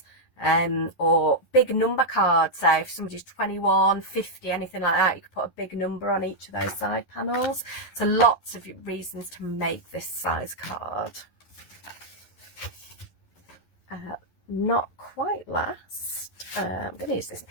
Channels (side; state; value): right; late; 11 ms